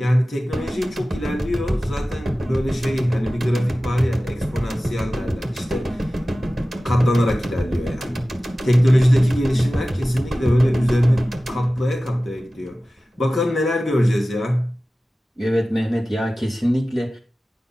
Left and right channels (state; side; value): normal; both; correlation 0.96